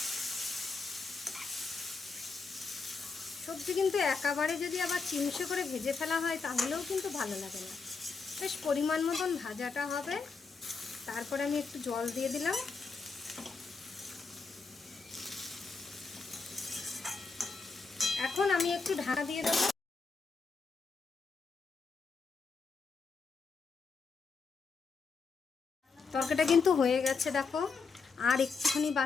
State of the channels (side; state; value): right; quieter; 4.7 dB